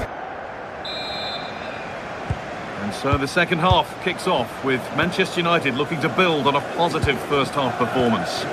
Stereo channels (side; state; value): both; identical; correlation 1.00